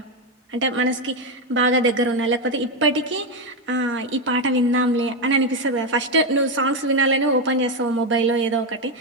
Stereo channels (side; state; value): both; normal; correlation 0.08